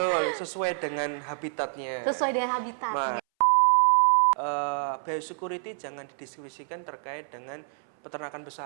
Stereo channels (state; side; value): silent; left; 60 dB below the other